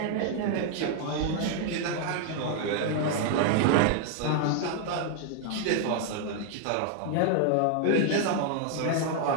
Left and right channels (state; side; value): different; both; correlation 0.00